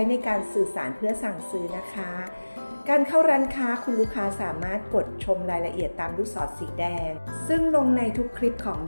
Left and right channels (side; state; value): both; inverted; correlation -1.00